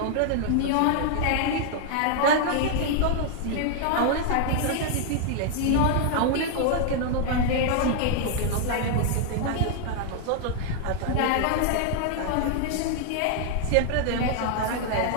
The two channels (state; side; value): different; both; correlation 0.00